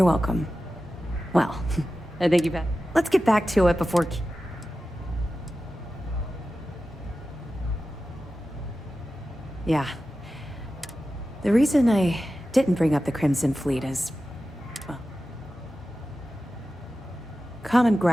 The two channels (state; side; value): normal; both; correlation 0.93